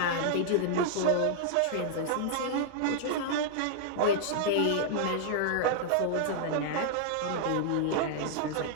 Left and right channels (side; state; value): both; different; correlation -0.01